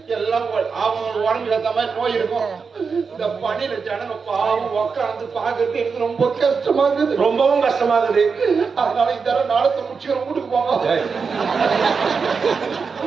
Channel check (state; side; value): quieter; left; 5.3 dB